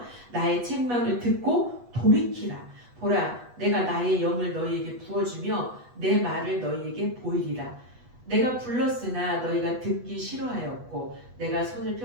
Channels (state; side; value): late; left; 8.2 ms